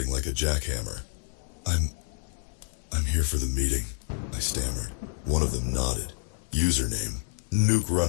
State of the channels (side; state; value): right; silent; 56 dB below the other